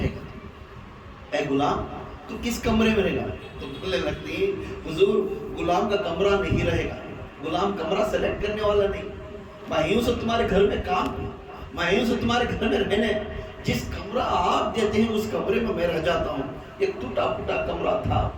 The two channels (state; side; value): identical; both; correlation 1.00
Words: گا؟ اے غلام تو کس کمرے میں رہے گا؟ تو بولنے لگتی حضور غلام کا کمرہ نہیں رہے گا، غلام کمرہ سلیکٹ کرنے والا نہیں، میں یوں سے تمہارے گھر میں کام ہوں، میں یوں سے تمہارے گھر میں رہنے، جس کمرہ آپ دیتے ہیں اس کمرے میں میں رہ جاتا ہوں. ایک ٹوٹا پھوٹا کمرہ تھا